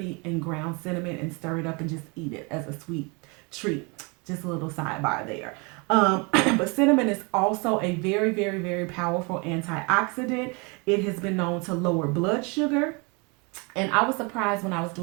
and ground cinnamon and stir it up and just eat it as a sweet treat. Just a little sidebar there. But cinnamon is also a very powerful antioxidant. It has been known to lower blood sugar. And I was surprised when I was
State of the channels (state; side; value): quieter; left; 30.3 dB